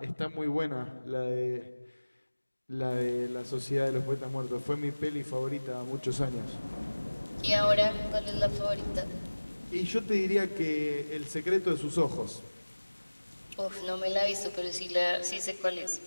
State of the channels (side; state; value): both; inverted; correlation -1.00